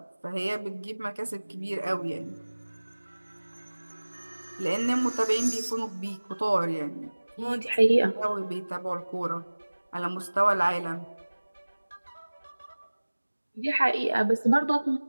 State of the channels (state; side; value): inverted; both; correlation -1.00